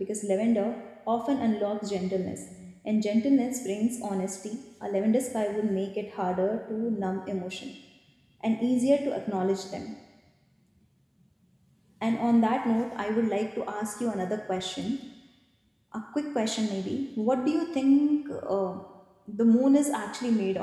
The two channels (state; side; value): identical; both; correlation 1.00